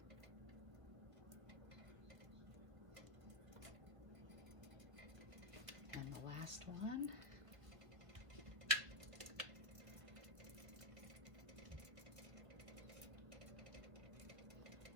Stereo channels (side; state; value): left; late; 1.3 ms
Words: And the last one.